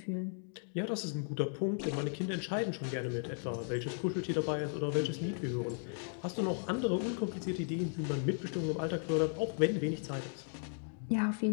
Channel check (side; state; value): right; silent; 54 dB below the other